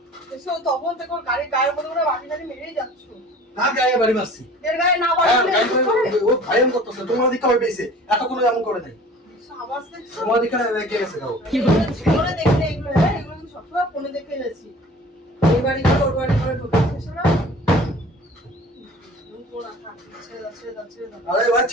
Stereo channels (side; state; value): both; normal; correlation 0.46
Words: এসো তখন দেখো গাড়ির গায়ের মধ্যে করে বাটি টাটি মেরেই যাচ্ছ। কার গায়ে বাড়ি মারছি? এর গায়ে না হ্যাঁ, বাড়ি গায়ে মেরে বাড়ি, ও ভাইরাল করতেছে, তোমার দিকে হবে পেয়েছে, এতক্ষণ এমন করে নাই। আওয়াজ দেখছো? তোমার দিকে রেগে গেছে গাও। জীবনে দেখলে এগুলো, হ্যাঁ, এগুলো কিন্তু সবসময় ফোনে দেখে গেছি। এই বাড়ি করে ওর বাড়ি করে ঢুকেছে না? ছেড়ে দাও, ছেড়ে দাও, ছেড়ে দাও। আরে ভাই